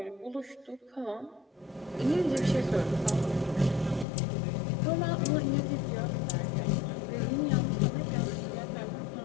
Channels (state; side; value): drops out; right; at 4.0 s